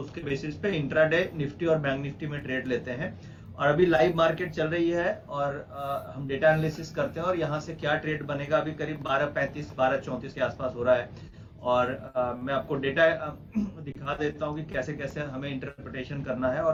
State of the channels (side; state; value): both; identical; correlation 1.00